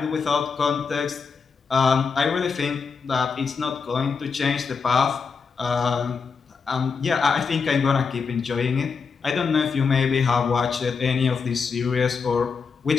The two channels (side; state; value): right; quieter; 5.4 dB